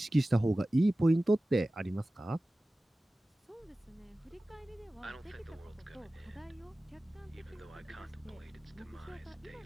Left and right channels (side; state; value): both; normal; correlation 0.96